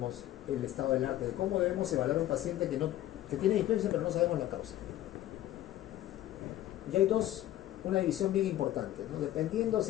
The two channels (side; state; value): right; quieter; 13.8 dB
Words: el estado del arte de cómo debemos evaluar a un paciente que tiene dispersia pero no sabemos la causa. Y hay una división bien importante, ¿no? Dependiendo